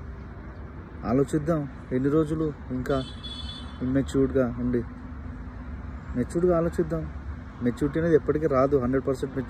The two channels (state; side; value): identical; both; correlation 1.00